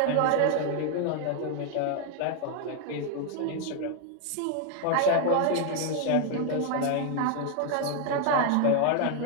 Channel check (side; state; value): both; different; correlation 0.00